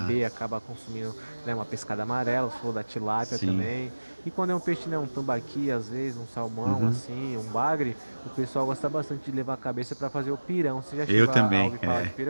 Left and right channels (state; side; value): inverted; both; correlation -1.00